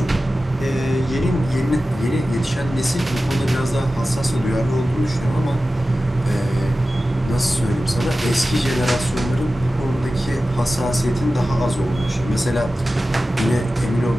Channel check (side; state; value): both; normal; correlation 0.95